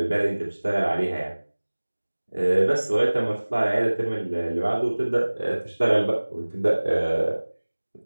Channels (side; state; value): both; inverted; correlation -1.00